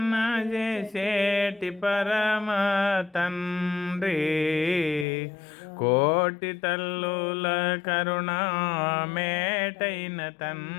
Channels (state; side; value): drops out; right; at 5.1 s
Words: చేసేటి పరమ తండ్రి, కోటి తల్లుల కరుణా మేటైన